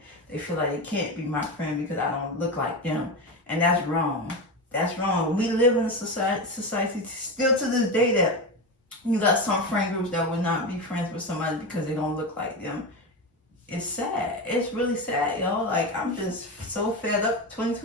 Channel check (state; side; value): normal; both; correlation 0.19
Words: They feel like they can't be my friend because I don't look like them. And that's wrong. That's wrong. We live in a society still to this day that you got some friend groups that would not be friends with somebody because they don't look like them. It's sad. It's really sad, y'all. Like, I'm just so fed up.